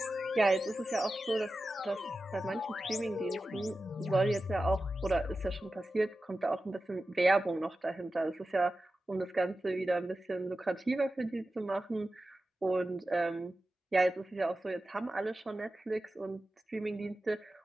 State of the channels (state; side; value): normal; both; correlation 0.93